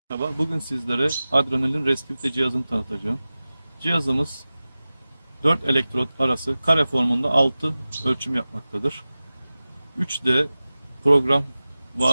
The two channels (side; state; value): both; inverted; correlation -0.97